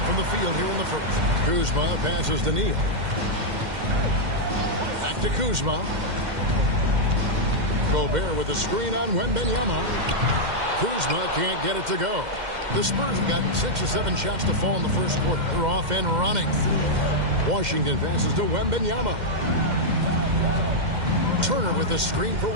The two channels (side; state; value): left; late; 2.1 ms